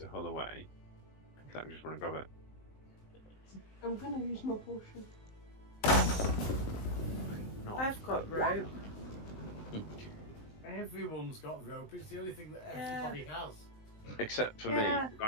hull away, then I'm just going to grab it. I'm gonna use my potion. No. I've got rope. Everyone's got rope. It's the only thing that everybody has. Except for Yeah. me,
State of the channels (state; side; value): late; right; 19 ms